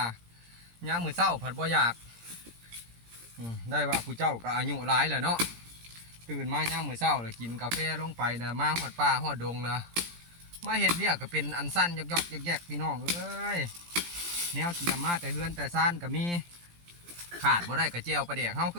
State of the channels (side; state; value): left; late; 17 ms